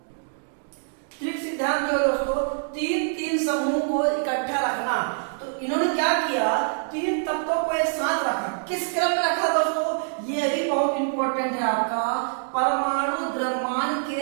त्रिक सिद्धांत जो है दोस्तों तीन तीन समूह को इकट्ठा रखना। तो इन्होंने क्या किया, तीन तत्वों को एक साथ रखा। किस क्रम में रखा दोस्तों, ये भी बहुत इंपॉर्टेंट है आपका, परमाणु द्रव्यमान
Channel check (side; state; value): left; silent; digital silence